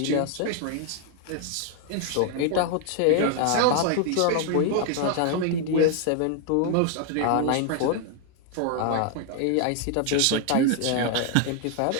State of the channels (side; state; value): both; different; correlation 0.00